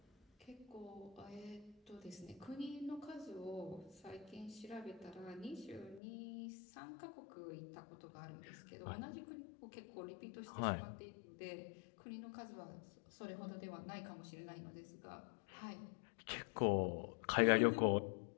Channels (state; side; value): drops out; right; at 6.0 s